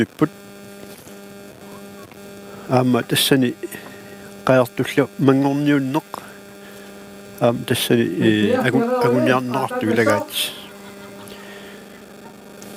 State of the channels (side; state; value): both; identical; correlation 1.00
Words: aama tassani qaartullu mangorniunneq aama tassani aguniarneqartuilagaat